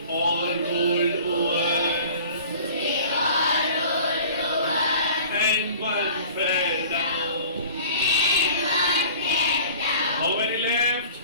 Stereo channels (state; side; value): inverted; both; correlation -0.44